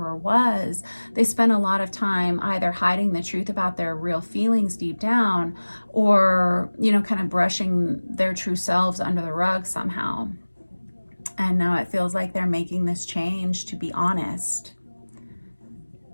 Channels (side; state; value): both; inverted; correlation -1.00